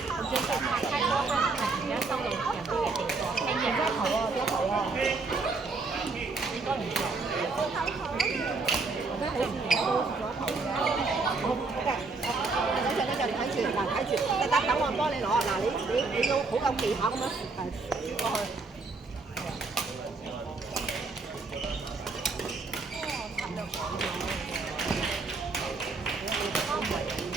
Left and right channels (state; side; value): quieter; left; 3.9 dB